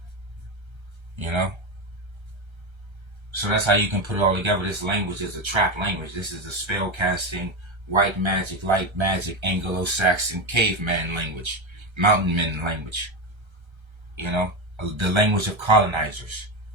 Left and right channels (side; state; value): left; late; 1.3 ms